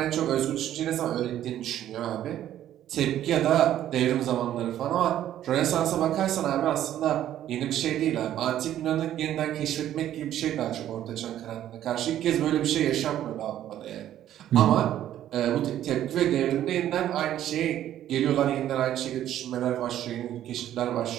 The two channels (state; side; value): quieter; left; 11.8 dB